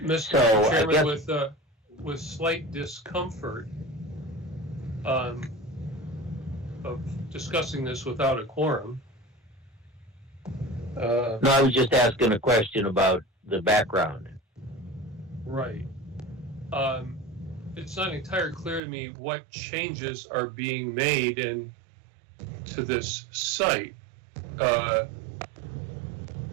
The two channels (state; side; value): drops out; left; at 18.8 s